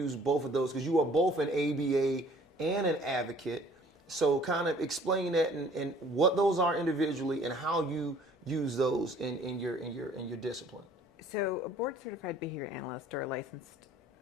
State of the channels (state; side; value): normal; both; correlation 0.54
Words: both of those, because you are both an ABA and an advocate. So kind of explain that and what those are individually and how you use those in your discipline. So a board certified behavior analyst or a licensed